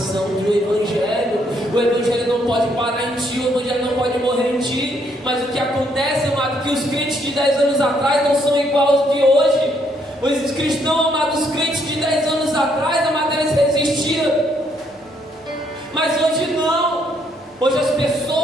do Evangelho. O Evangelho não pode parar em ti, o Evangelho não pode morrer em ti. Mas o que acontece, amado, que os crentes de 10 anos atrás não são iguais aos de hoje. Os cristãos, amados, os crentes de 10 anos atrás, amado, eles resistiram. Mas hoje não. Hoje as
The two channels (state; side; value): normal; both; correlation 0.71